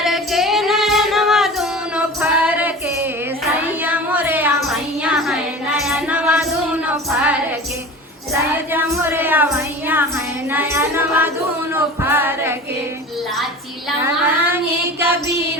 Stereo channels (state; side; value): normal; both; correlation 0.36